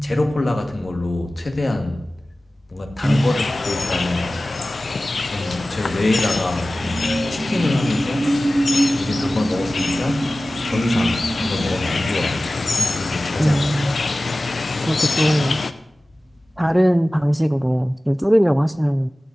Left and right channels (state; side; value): normal; both; correlation 0.97